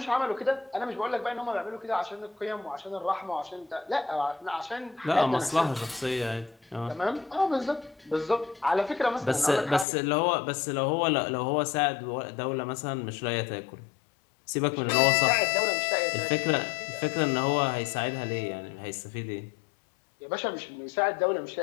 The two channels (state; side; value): drops out; right; at 9.9 s